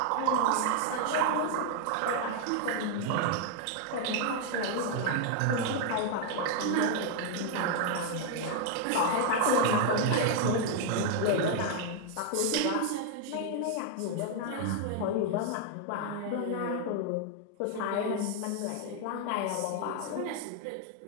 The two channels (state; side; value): different; both; correlation 0.00